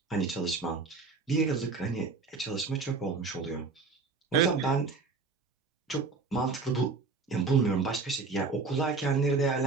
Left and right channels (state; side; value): quieter; left; 4.4 dB